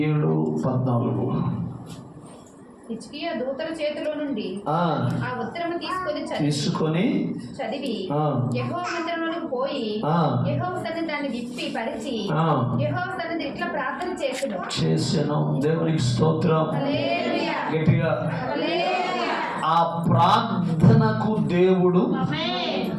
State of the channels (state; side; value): identical; both; correlation 1.00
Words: 37:14. హిజ్కియా దూతల చేతిలో నుండి ఆ ఉత్తరము తీసుకొని చదివి యెహోవా మందిరంలోకి పోయి యెహోవా సన్నిధిని దాన్ని విప్పి పరిచి యెహోవా సన్నిధిని ఇట్లా ప్రార్థన చేసెను. దేవునికి స్తోత్రం. హల్లెలూయా. గట్టిగా హల్లెలూయా. ఆ ప్రార్థనకు దేవుడు